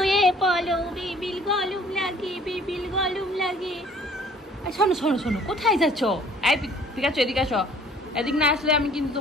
পড়ো, বিবিল গরম লাগে, বিবিল গরম লাগে। শোনো শোনো শোনো, কোথায় যাচ্ছ? এই পিকাচু, এদিকে আসো। এদিক না আসলে আমি কিন্তু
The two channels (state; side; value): normal; both; correlation 0.55